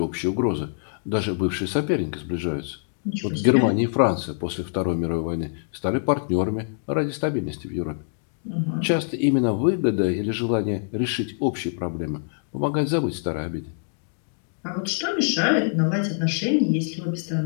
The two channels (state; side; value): silent; right; digital silence